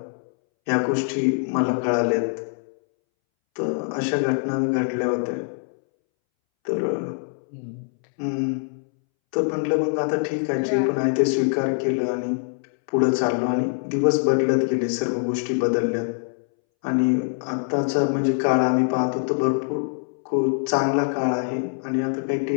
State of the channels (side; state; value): right; silent; 63 dB below the other